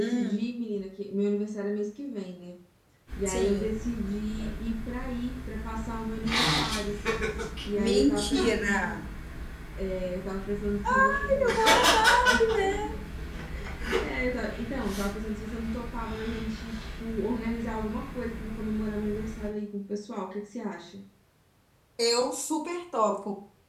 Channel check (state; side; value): identical; both; correlation 1.00